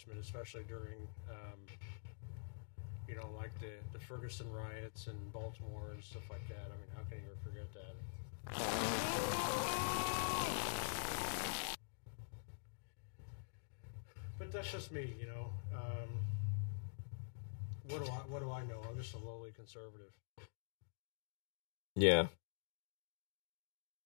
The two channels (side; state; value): right; silent; digital silence